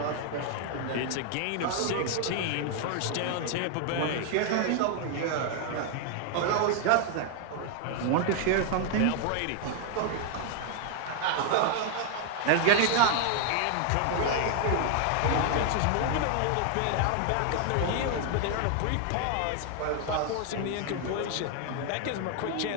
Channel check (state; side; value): different; both; correlation 0.00